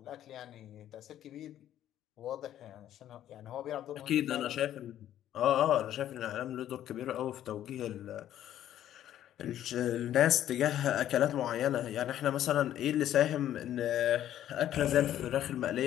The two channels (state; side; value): quieter; right; 11.7 dB